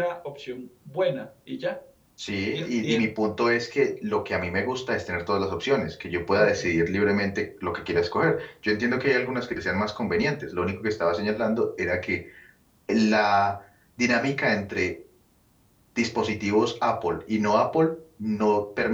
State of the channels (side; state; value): both; identical; correlation 1.00